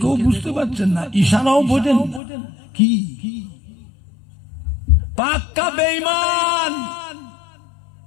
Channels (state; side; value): drops out; right; at 2.2 s